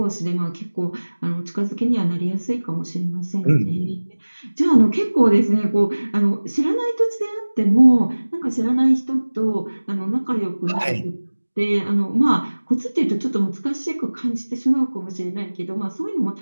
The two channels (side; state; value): both; inverted; correlation -1.00